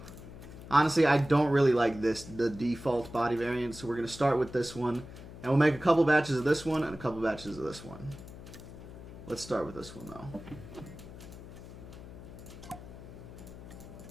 Honestly, I don't really like the default body variant, so we're going to start with this one. And we'll make a couple batches of this one and a couple batches of this one. Let's start with this one, though.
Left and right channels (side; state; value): left; noise; hum, 14 dB below the sound